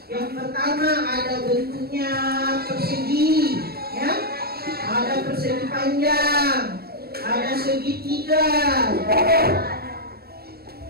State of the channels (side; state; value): left; late; 0.45 ms